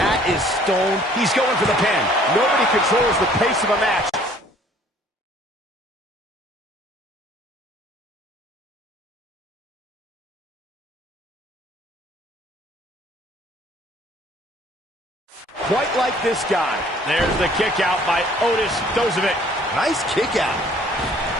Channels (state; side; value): normal; both; correlation 0.57